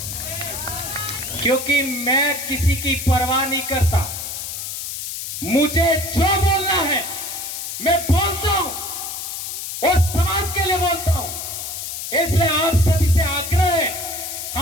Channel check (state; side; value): noise; left; hiss, 6 dB below the sound